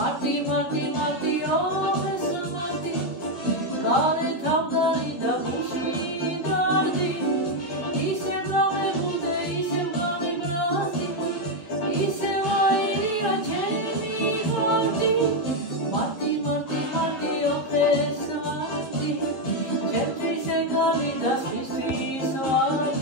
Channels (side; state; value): right; late; 11 ms